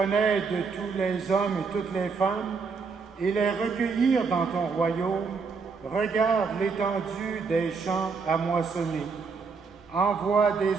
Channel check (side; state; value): left; quieter; 5.0 dB